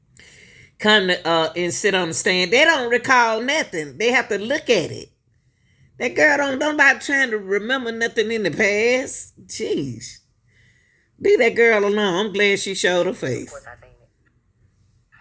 come to, and sit on the stand. They don't recall nothing. They have to look at it. That girl don't nobody trying to remember nothing in the past. Jeez. Leave that girl alone. I'm glad she showed her face. Of course I seen it.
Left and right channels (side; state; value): both; identical; correlation 1.00